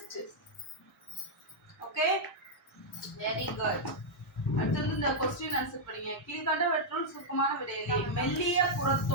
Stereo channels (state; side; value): normal; both; correlation -0.05